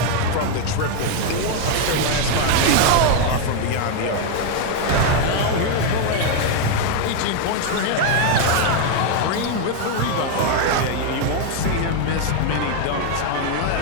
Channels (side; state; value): both; different; correlation 0.01